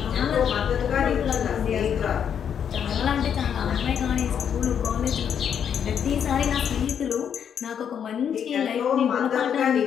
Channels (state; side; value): quieter; right; 8.2 dB